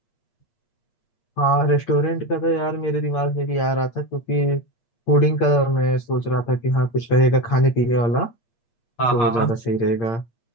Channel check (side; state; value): right; late; 8.7 ms